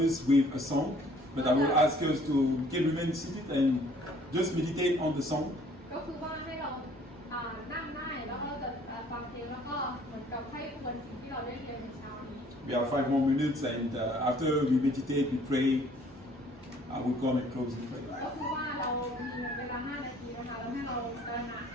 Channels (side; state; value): both; normal; correlation 0.57